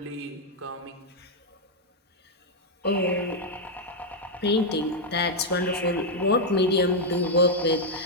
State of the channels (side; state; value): both; normal; correlation -0.01